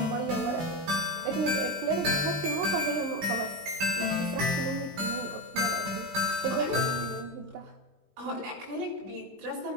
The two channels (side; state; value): left; late; 20 ms